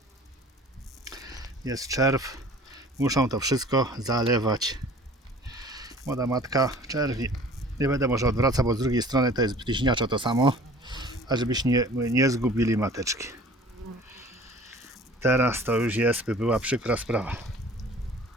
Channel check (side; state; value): both; normal; correlation 0.47